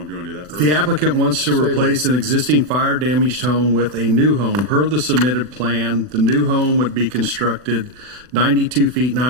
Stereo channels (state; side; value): late; left; 40 ms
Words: Do you want to do that first? The applicant wants to Stay replace an existing fire damaged home with a new home. Per the submitted plan, the new home would be constructed 92 feet